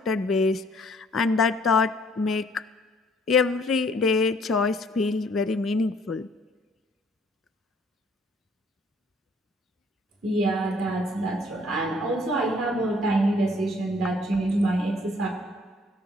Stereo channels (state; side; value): normal; both; correlation 0.61